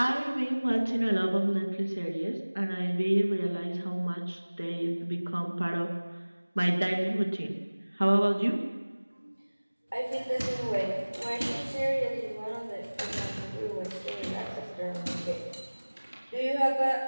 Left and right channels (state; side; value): inverted; both; correlation -1.00